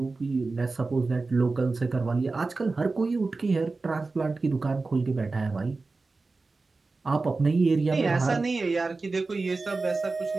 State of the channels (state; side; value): quieter; left; 3.8 dB